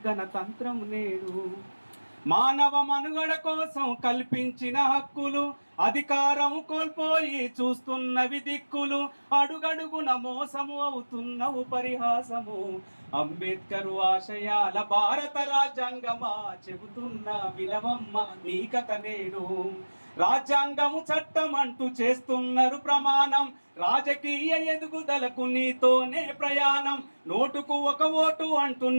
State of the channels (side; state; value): both; inverted; correlation -1.00